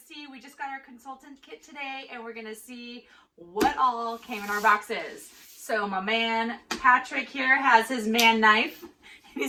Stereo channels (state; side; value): identical; both; correlation 1.00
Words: see, we just got our consultant kit today, and we're gonna see what all came in our boxes. So my man Patrick here has his man knife.